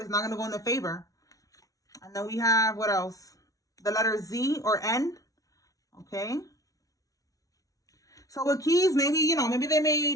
It's not going to go in their favor. And then we have, what else? The letter Z or N. Okay. So with keys, maybe, you know, maybe they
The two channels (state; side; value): late; right; 0.17 ms